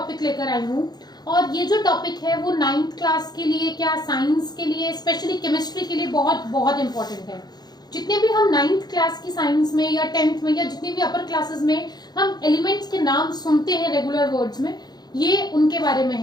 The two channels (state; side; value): late; right; 0.20 ms